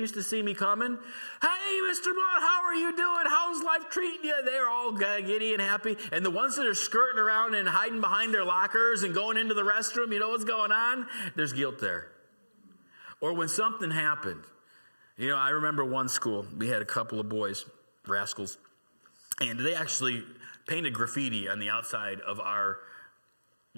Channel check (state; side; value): inverted; both; correlation -1.00